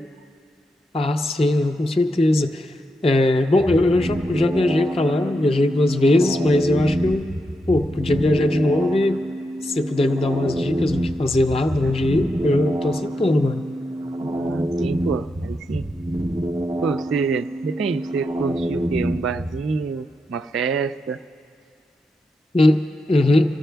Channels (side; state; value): both; normal; correlation 0.85